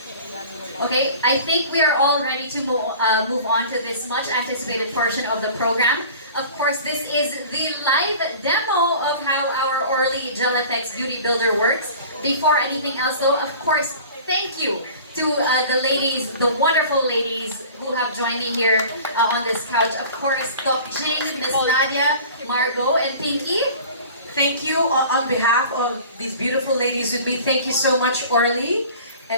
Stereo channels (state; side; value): inverted; both; correlation -0.43